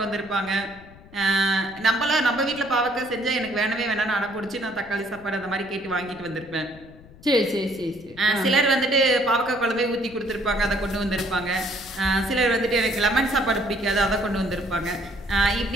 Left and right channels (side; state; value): left; noise; rumble, 21 dB below the sound